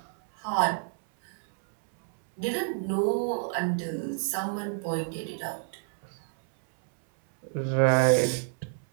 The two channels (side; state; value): left; silent; 59 dB below the other